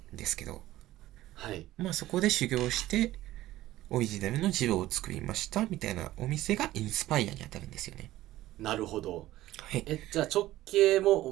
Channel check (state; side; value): quieter; left; 15.5 dB